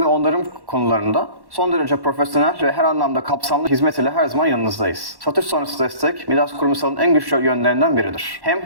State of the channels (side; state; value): left; late; 1.1 ms